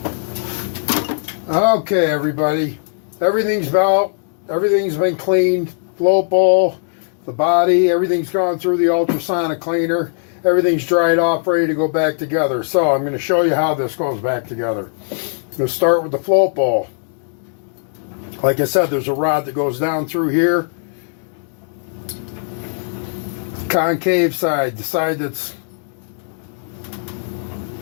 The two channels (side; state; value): right; silent; digital silence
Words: Okay, everybody. Everything's been cleaned. Float bowl, the body, everything's gone through the ultrasonic cleaner. Everything's dried off, ready to go back together. So I'm going to show you how this goes back together. Let's start with the float bowl. Like I said, there's a rod that goes down through here. Concave side, the side that's